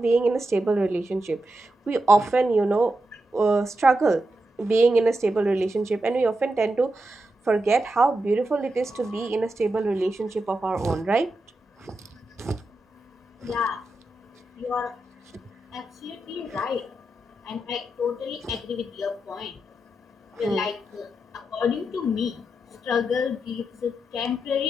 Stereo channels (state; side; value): normal; both; correlation 0.87